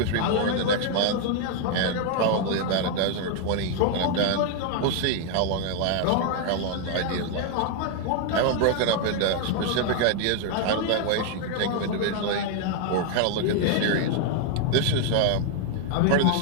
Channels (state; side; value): different; both; correlation 0.00